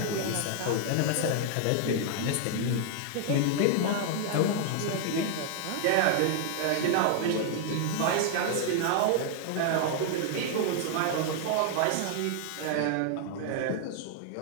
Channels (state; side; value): different; both; correlation 0.00